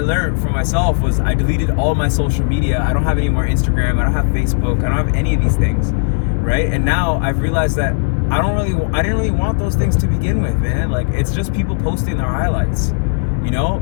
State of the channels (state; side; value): silent; right; digital silence